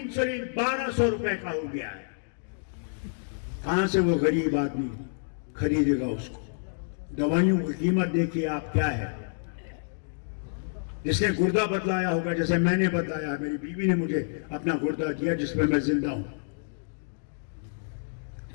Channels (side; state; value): right; silent; digital silence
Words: 1200 रुपए का हो गया है। कहां से वो गरीब आदमी खरीदेगा उसको? दवाइयों की कीमत देखिए आप क्या है। जिसने गुर्दा बदलाया होगा, जैसे मैंने बदलाया, मेरी बीवी ने मुझे अपना गुर्दा दिया जिसमें मैं जिंदा हूं,